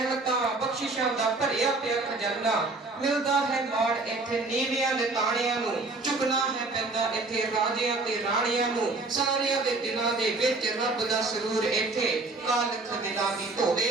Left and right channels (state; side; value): quieter; left; 3.4 dB